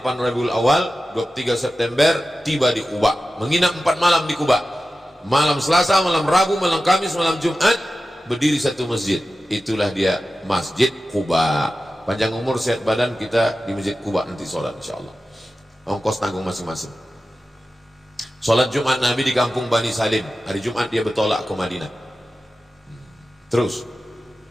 Rabiul Awal 23 September tiba di Quba, menginap 4 malam di Quba. Malam Selasa, malam Rabu, malam Kamis, malam Jumat berdiri satu masjid. Itulah dia Masjid Quba. Panjang umur sehat badan, kita di Masjid Quba nanti sholat insyaallah. Ongkos tanggung masing-masing. Sholat Jumat Nabi di kampung Bani Salim. Hari Jumat dia bertolak ke Madinah. Terus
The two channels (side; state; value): both; normal; correlation 0.94